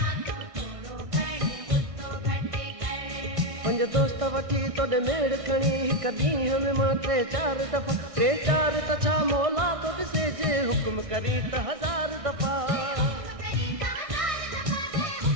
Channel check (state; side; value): late; left; 1.6 ms